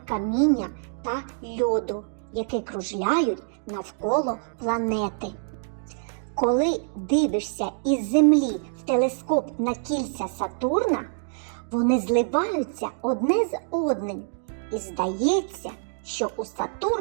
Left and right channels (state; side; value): silent; left; digital silence